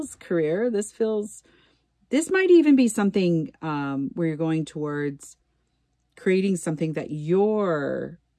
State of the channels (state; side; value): identical; both; correlation 1.00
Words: career. This might even be something where you're going towards creating something that you're